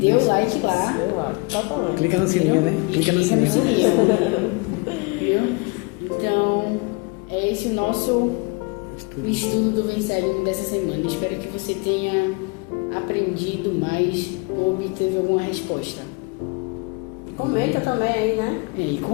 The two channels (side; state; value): right; quieter; 29.3 dB